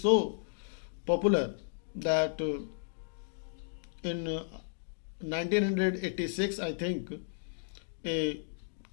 popular that in 1986 I think a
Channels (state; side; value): silent; right; digital silence